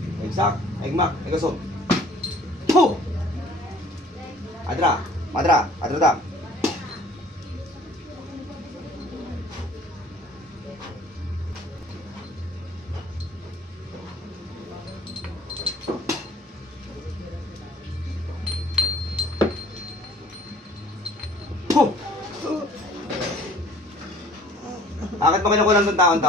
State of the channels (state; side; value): normal; both; correlation 0.53